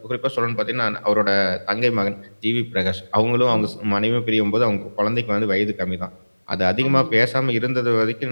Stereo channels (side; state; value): both; inverted; correlation -1.00